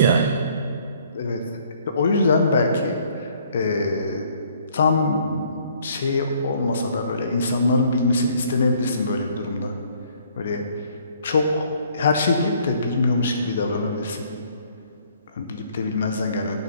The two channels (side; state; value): both; inverted; correlation -0.62